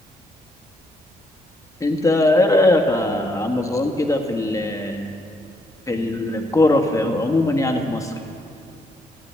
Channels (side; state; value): both; normal; correlation 0.74